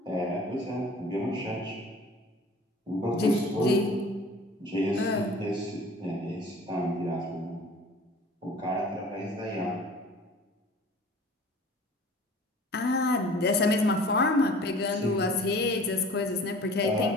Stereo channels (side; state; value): both; normal; correlation 0.46